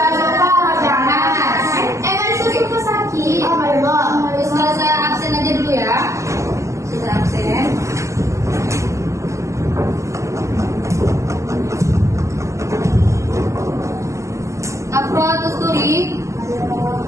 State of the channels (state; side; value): late; left; 0.15 ms